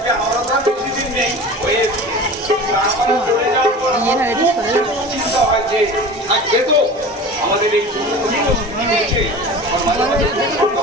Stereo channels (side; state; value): both; normal; correlation 0.36